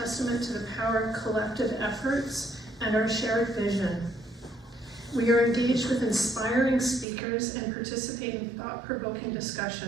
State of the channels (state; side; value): drops out; left; at 7.1 s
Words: to the power of collective efforts and our shared vision. We are engaged with inspiring speakers and participate in thought-provoking